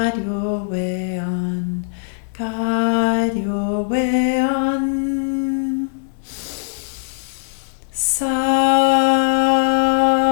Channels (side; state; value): right; silent; digital silence